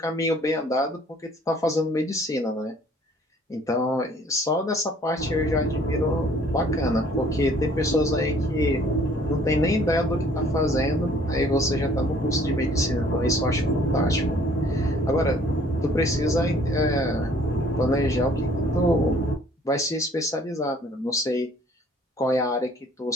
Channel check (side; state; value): both; normal; correlation 0.57